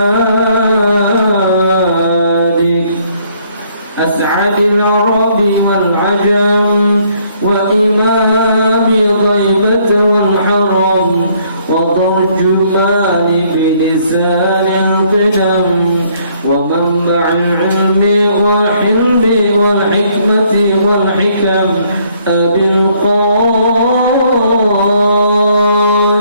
أسعد العرب والعجم وإمام ضيبة والحرم وترجمان بلسان القدم ومنبع العلم والحلم والحكمة والحكم أبي القاسم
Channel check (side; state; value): both; inverted; correlation -0.66